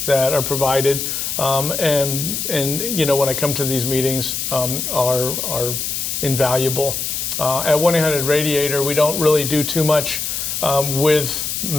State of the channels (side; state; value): left; noise; hiss, 3 dB below the sound